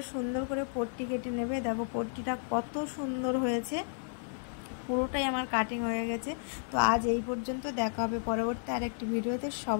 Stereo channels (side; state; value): right; silent; digital silence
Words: সুন্দর করে পট্টি কেটে নেবে। দেখো পট্টিটা কত সুন্দর হয়েছে, পুরোটাই আমার কাটিং হয়ে গেছে। তো আজ এই পর্যন্ত, দেখা হবে পরবর্তী আরেকটি ভিডিওতে।